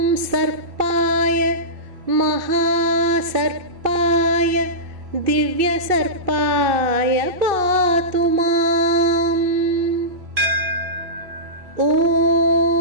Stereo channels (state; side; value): late; left; 2.6 ms